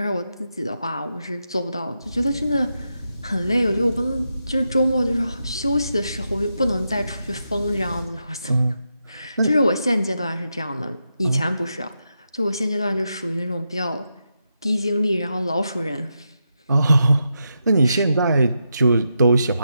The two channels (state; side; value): inverted; both; correlation -0.85